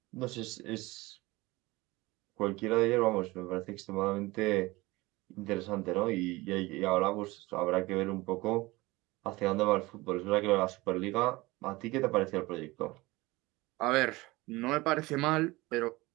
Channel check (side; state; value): left; quieter; 21.1 dB